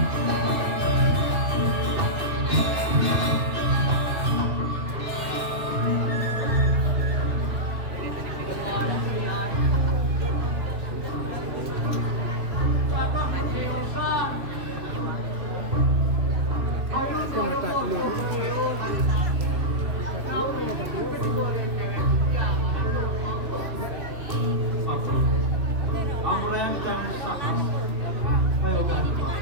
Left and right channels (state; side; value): late; left; 3.0 ms